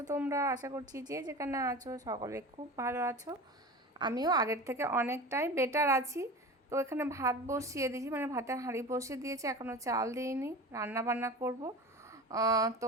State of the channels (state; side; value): normal; both; correlation 0.32